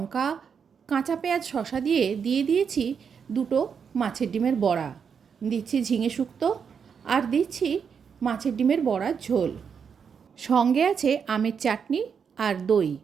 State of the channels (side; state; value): left; quieter; 6.7 dB